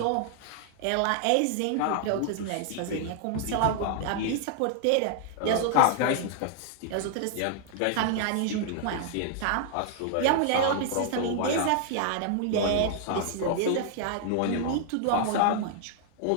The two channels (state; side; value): different; both; correlation 0.00